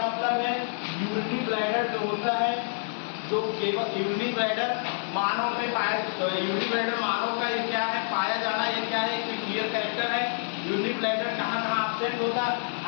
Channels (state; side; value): silent; right; digital silence